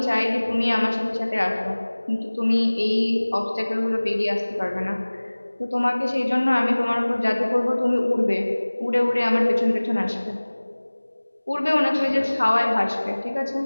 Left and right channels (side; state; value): both; inverted; correlation -1.00